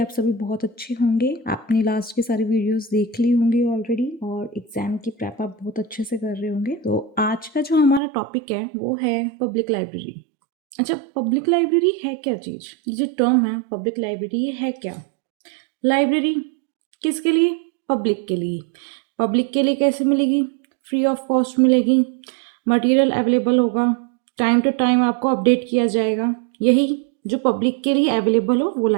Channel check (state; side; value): drops out; left; at 8.0 s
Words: सभी बहुत अच्छे होंगे। आपने लास्ट की सारी वीडियोस देख ली होंगी ऑलरेडी और एग्जाम की प्रेप आप बहुत अच्छे से कर रहे होंगे। तो आज का जो हमारा टॉपिक है वो है पब्लिक लाइब्रेरी। अच्छा, पब्लिक लाइब्रेरी है क्या चीज़? ये जो टर्म है पब्लिक लाइब्रेरी, ये है क्या? लाइब्रेरी किसके लिए? पब्लिक के लिए। पब्लिक के लिए कैसे मिलेगी? फ्री ऑफ कॉस्ट मिलेगी, मटेरियल अवेलेबल होगा, टाइम टू टाइम आपको अपडेट किया जाएगा। यही जो पब्लिक के लिए अवेलेबल हो वो